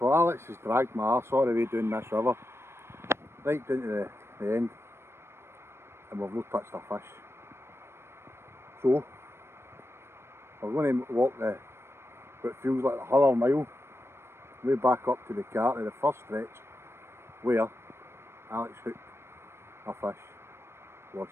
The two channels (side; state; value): left; late; 0.12 ms